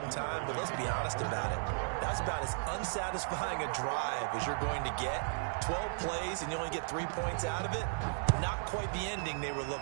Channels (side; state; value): left; silent; 54 dB below the other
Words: time, but let's be honest about it. That's about as unsatisfying a drive as you're going to get. 12 plays and you only get 3 points out of it. Not quite the ending they were